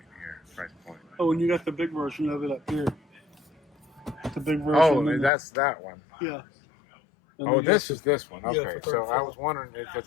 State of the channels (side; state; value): right; drops out; at 5.3 s